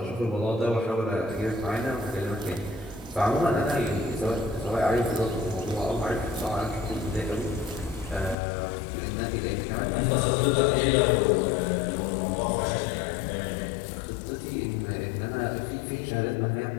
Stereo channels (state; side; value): drops out; right; at 8.3 s